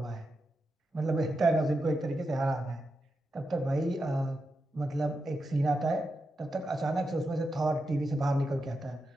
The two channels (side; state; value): both; normal; correlation 0.87